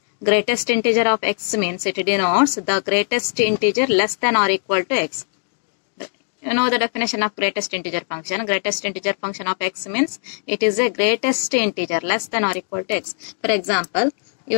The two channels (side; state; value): right; silent; digital silence